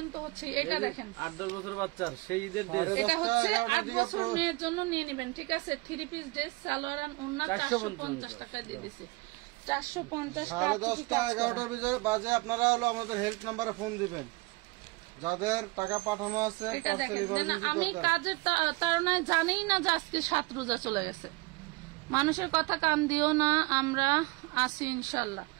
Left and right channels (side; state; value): left; quieter; 24.1 dB